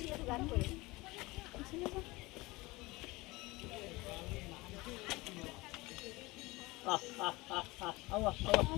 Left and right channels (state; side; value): quieter; right; 22.0 dB